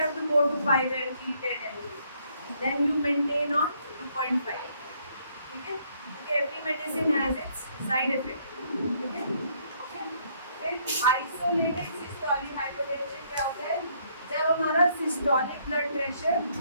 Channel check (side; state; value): both; inverted; correlation -0.68